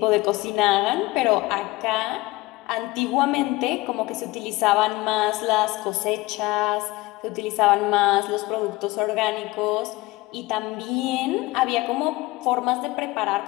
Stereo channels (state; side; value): quieter; right; 20.7 dB